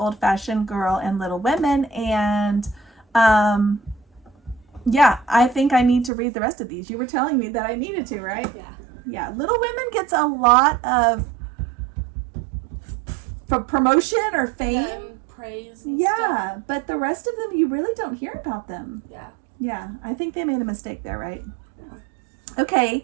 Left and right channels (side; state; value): left; drops out; at 6.1 s